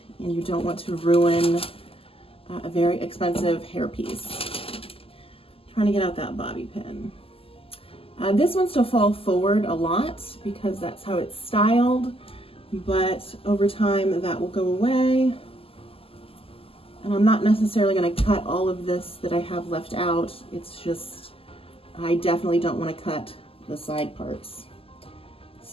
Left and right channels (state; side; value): late; right; 0.27 ms